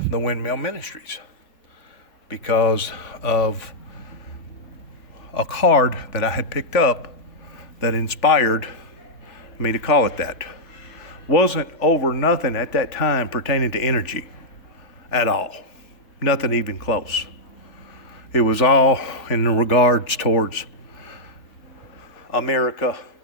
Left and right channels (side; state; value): right; late; 3.5 ms